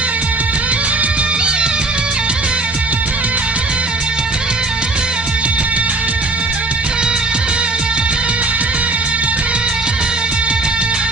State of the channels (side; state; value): left; quieter; 3.1 dB